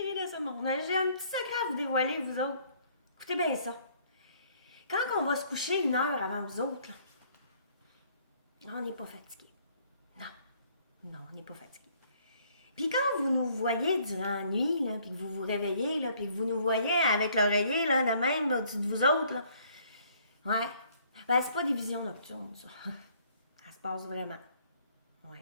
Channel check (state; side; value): inverted; both; correlation -0.62